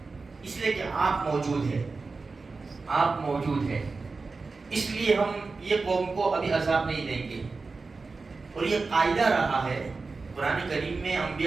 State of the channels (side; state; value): left; quieter; 4.1 dB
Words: اس لیے کہ آپ موجود ہیں، آپ موجود ہیں، اس لیے ہم یہ قوم کو ابھی عذاب نہیں دیں گے۔ اور یہ قاعدہ رہا ہے قرآن کریم میں،